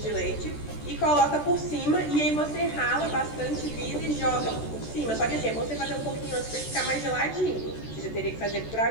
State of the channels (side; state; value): right; late; 14 ms